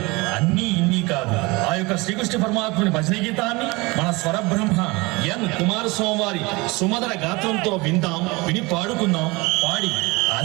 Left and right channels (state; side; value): quieter; left; 24.5 dB